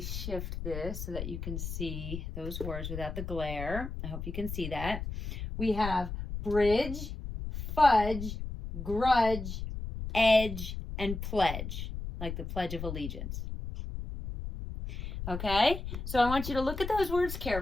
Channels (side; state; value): left; noise; rumble, 6 dB below the sound